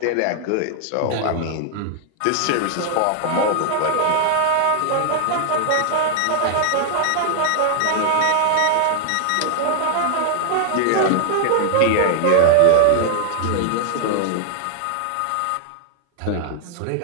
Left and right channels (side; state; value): both; different; correlation 0.00